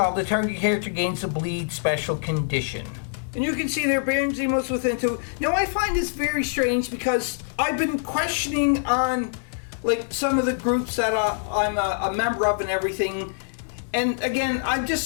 the target character gains a bleed special condition. And you can see there, Baron Zemo's within 2. Now, I find this very strange because I've been questioning on, like, some of the groups that I'm a member of and everything. And again, I'm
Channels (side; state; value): right; silent; digital silence